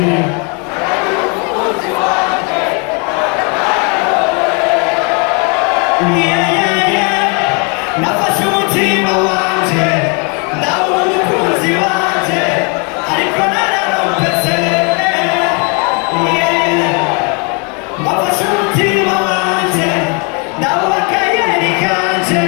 nafashe umutima wanje ndabona umukunzi wanje ariko nararompese nafashe umutima wanje ndabona akayeri kanje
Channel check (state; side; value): quieter; right; 34.4 dB